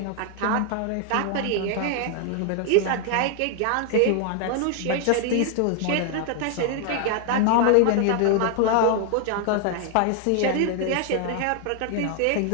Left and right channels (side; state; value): both; different; correlation 0.00